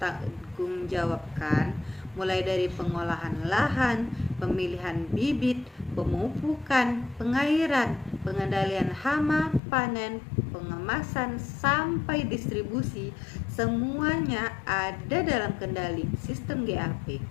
mulai dari pengolahan lahan, pemilihan bibit, pemupukan, pengairan, pengendalian hama, panen, pengemasan, sampai distribusi, semuanya ada dalam kendali sistem GAP.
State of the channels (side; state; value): right; drops out; at 9.6 s